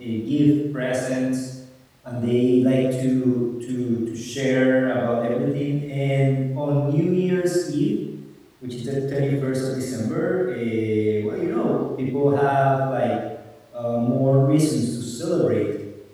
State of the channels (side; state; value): both; identical; correlation 1.00